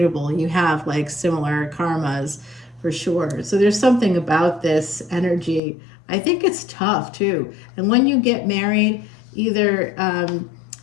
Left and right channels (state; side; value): drops out; right; at 5.6 s